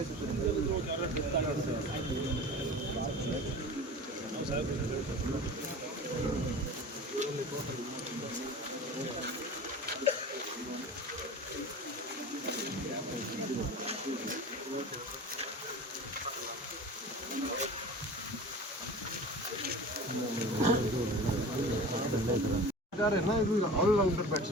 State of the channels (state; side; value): normal; both; correlation 0.36